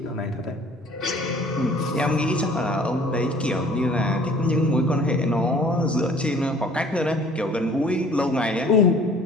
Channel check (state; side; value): normal; both; correlation 0.52